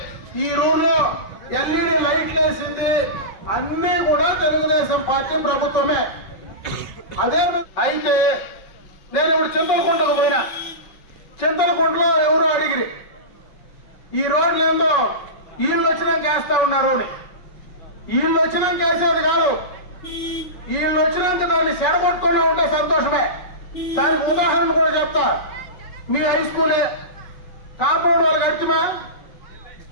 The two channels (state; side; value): late; right; 5.3 ms